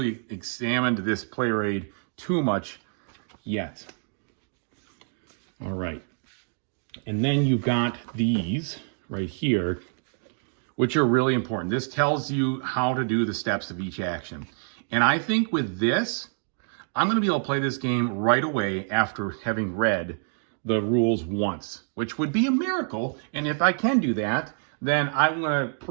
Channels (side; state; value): left; silent; 60 dB below the other